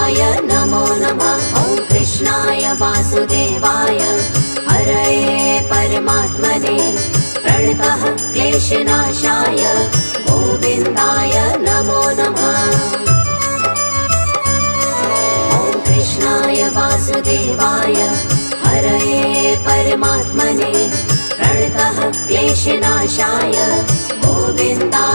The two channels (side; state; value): both; inverted; correlation -1.00